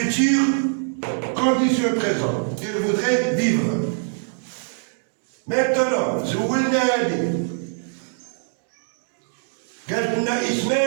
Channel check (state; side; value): silent; left; digital silence